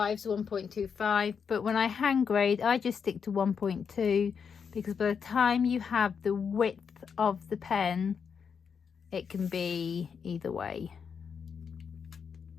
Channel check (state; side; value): quieter; right; 6.5 dB